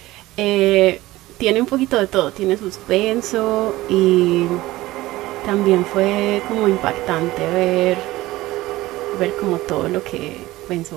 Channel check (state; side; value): quieter; left; 17.8 dB